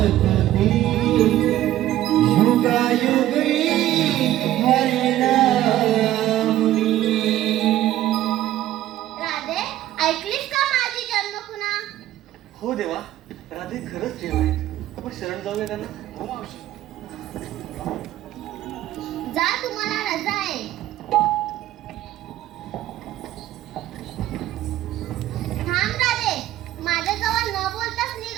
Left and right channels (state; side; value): quieter; left; 13.8 dB